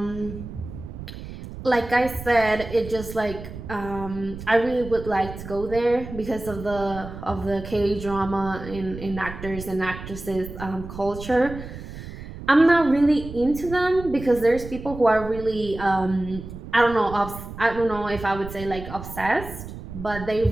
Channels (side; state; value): right; noise; rumble, 11 dB below the sound